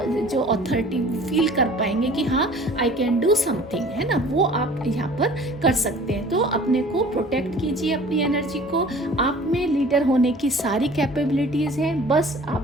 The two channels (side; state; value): both; normal; correlation 0.47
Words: जो अथॉरिटी फील कर पाएंगे कि हाँ आई कैन डू समथिंग, है ना, वो आप यहाँ पर कर सकते हैं। तो अपने को प्रोटेक्ट कीजिए अपनी एनर्जी को। आप में लीडर होने की सारी कैपेबिलिटीज़ हैं, बस